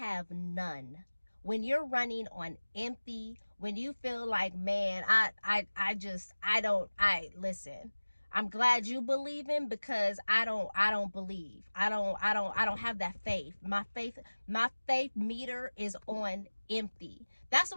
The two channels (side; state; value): both; inverted; correlation -1.00